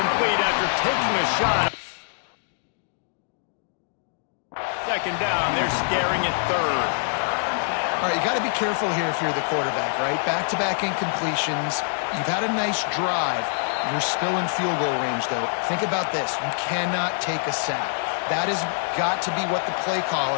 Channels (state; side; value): silent; right; digital silence